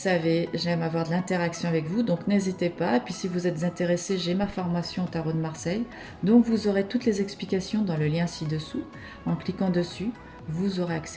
j'aime avoir de l'interaction avec vous, donc n'hésitez pas. Et puis si vous êtes intéressé, j'ai ma formation au Tarot de Marseille, donc vous aurez toutes les explications dans le lien ci-dessous. En cliquant dessus, vous aurez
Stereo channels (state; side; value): identical; both; correlation 1.00